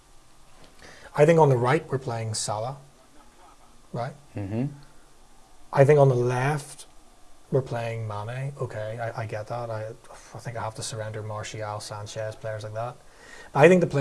I think on the right we're playing Salah, right? I think on the left we're playing Mane. Okay, I get that. I think I have to surrender Martial, Sanchez, players like that. I think the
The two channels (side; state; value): both; identical; correlation 1.00